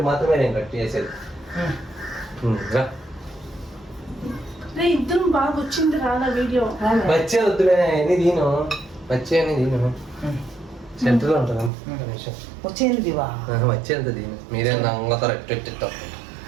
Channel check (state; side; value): drops out; left; at 11.7 s